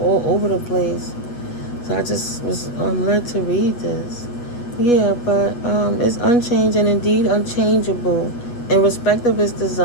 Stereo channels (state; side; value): late; right; 8.3 ms